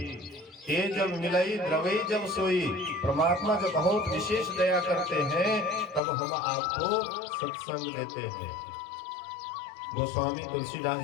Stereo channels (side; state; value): right; drops out; at 6.0 s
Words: ये जब मिलाई द्रवई जब सोई, परमात्मा जब बहुत विशेष दया करते हैं, तब हम आपको सत्संग देते हैं। गोस्वामी तुलसीदास